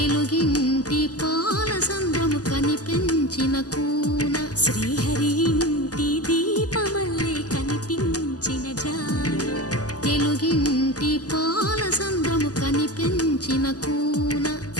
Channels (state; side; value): late; right; 0.67 ms